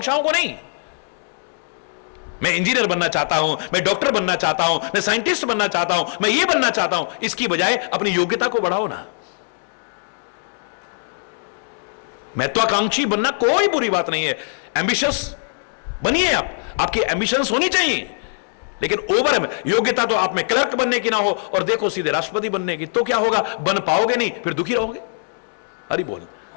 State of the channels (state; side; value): silent; right; digital silence